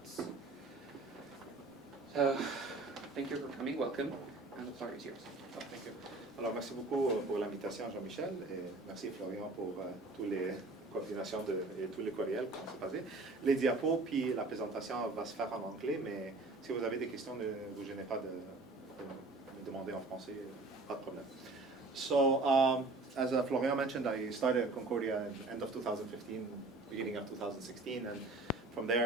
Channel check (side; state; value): left; quieter; 3.2 dB